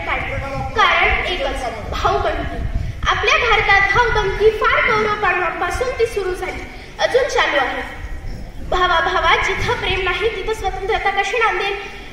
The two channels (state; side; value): identical; both; correlation 1.00